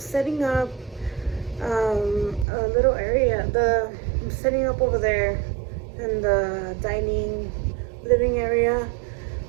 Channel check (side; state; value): left; drops out; at 2.5 s